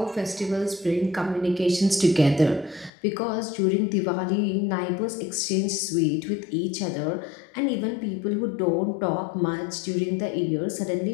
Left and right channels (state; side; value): drops out; right; at 2.9 s